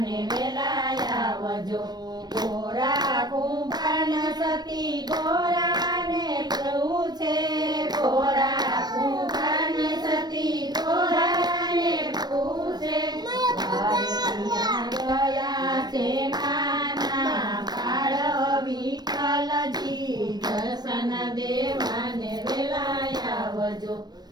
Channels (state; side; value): late; left; 0.19 ms